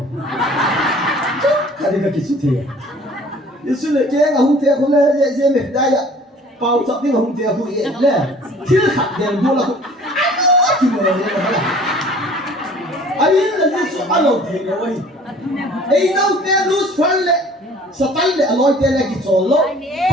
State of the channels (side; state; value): both; normal; correlation 0.50